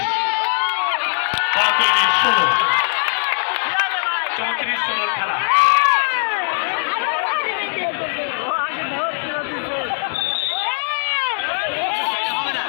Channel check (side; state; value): right; silent; 66 dB below the other